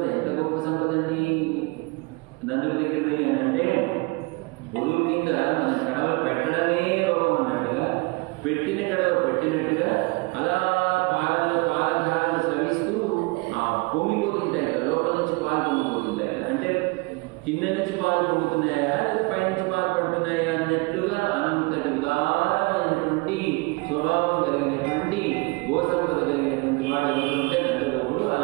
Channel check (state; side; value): quieter; left; 26.6 dB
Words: ఎంత గొప్ప సంపద అండి నందుడి దగ్గరది అని అంటే, పొడుగు కింద మన కడవలు పెట్టడమే లోపం అన్నట్టుగా పెట్టిన కడవ పెట్టినట్టుగా అలా పాలధారలు స్రవిస్తూ పొంగిపోతుంటాయి కదా, లోపల నుంచి పాలు పొంగిపోతుంటాయి కదా. అంటే కింద నుంచి పాలు పొంగుతున్నాయా పైనుంచి పాలు పడుతున్నాయా అన్నట్లుగా అంతటి ఉదారమైనటువంటి స్వభావం కలిగినటువంటి గో సంపద కలిగినటువంటి వాడు ఎవరుంటే నందగోపుడు.